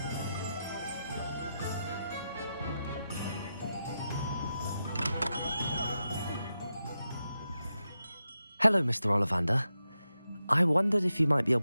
Hello, Mr. Ollivander. I wondered if you might be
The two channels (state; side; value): inverted; both; correlation -0.88